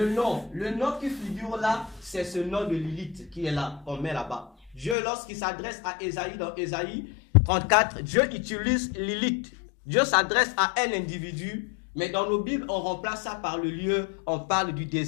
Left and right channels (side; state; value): right; drops out; at 5.0 s